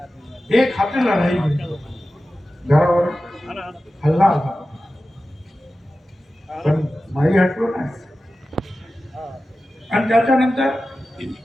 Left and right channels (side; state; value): both; normal; correlation 0.94